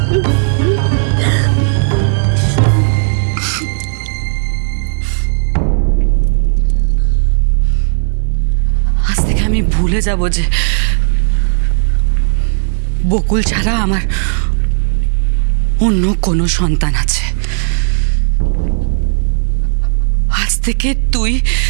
আজ থেকে আমি ভুলে যাব যে বকুল ছাড়া আমার অন্য কোনো সন্তান আছে। আজ থেকে তুই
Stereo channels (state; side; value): silent; left; digital silence